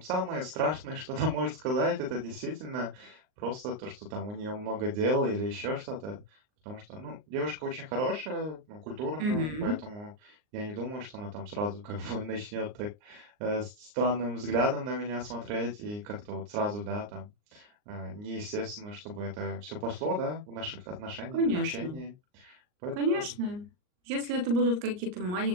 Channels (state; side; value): late; left; 39 ms